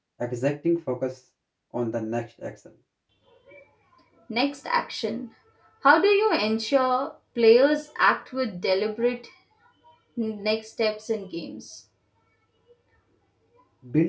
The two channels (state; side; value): identical; both; correlation 1.00